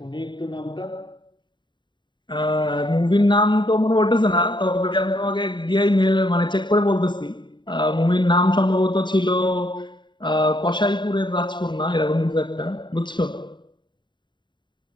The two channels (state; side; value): late; right; 0.22 ms